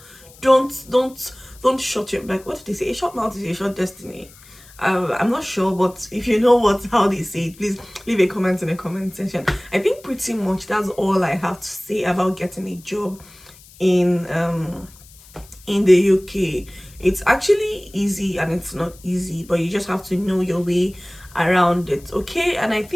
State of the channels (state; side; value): noise; left; hiss, 23 dB below the sound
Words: Don't shut your back. What did they say? A short mouth is a short destiny. I'm not sure, but if you know how they say it, please leave a comment in the comment section. I think pretty much that's all I have to say about getting a job in the UK. It's actually easy and it's not easy, but you just have to know your way around it. Okay, and I